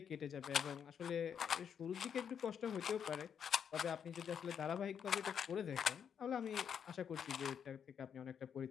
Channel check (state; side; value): quieter; right; 7.8 dB